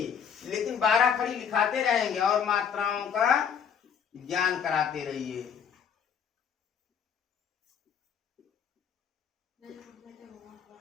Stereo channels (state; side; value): quieter; right; 7.7 dB